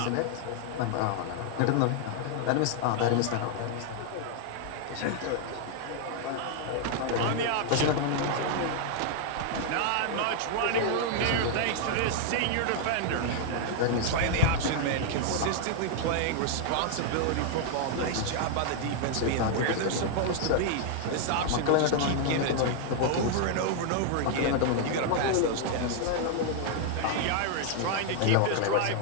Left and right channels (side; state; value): both; different; correlation 0.00